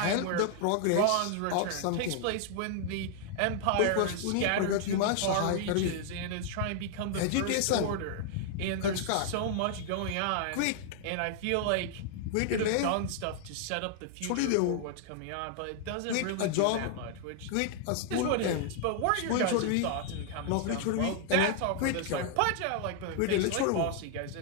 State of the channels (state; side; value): different; both; correlation 0.00